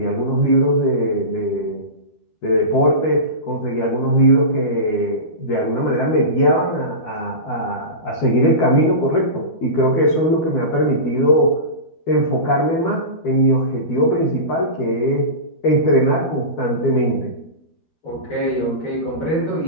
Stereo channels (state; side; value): late; right; 12 ms